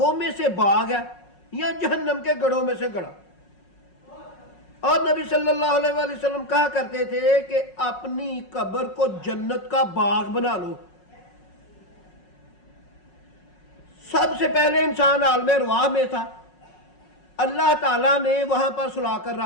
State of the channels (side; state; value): right; late; 5.5 ms